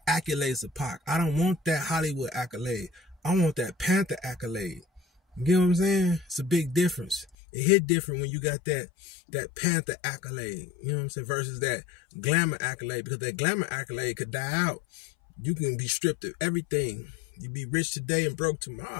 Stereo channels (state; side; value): drops out; right; at 7.4 s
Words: accolades of Pac. I don't want that Hollywood accolade. I want that Panther accolade. You get what I'm saying? It's a big difference. It hit different when you got that Panther accolade, you know what I'm saying, versus that glamour accolade, because that glamour accolade could die out. You can be stripped of everything. You be rich today and broke